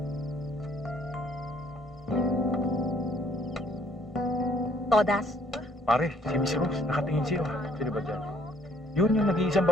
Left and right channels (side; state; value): both; normal; correlation 0.63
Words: Todas. Pare, si Miss Rose, nakatingin siya. Sino ba dyan? Yun yung nag-iisang